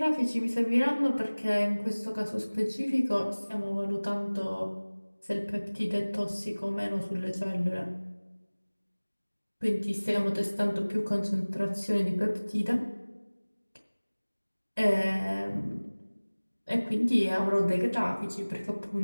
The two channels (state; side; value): inverted; both; correlation -1.00